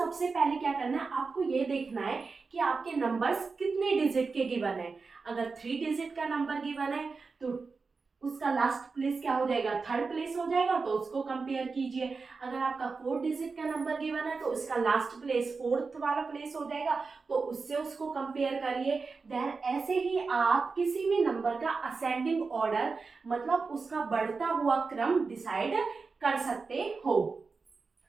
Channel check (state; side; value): quieter; left; 4.5 dB